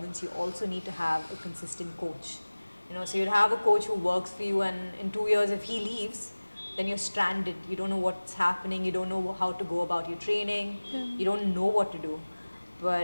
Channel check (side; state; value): both; inverted; correlation -1.00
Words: you also need to have a consistent coach. So you'd have a coach who works for you, and in 2 years if he leaves, then you're stranded. You don't know what's happening, you don't know how to go about your training, you don't know what to do.